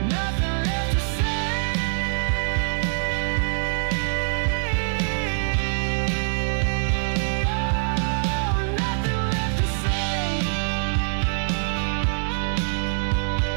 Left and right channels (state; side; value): silent; left; digital silence